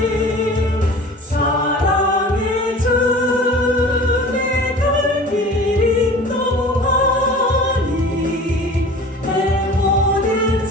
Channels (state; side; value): normal; both; correlation 0.41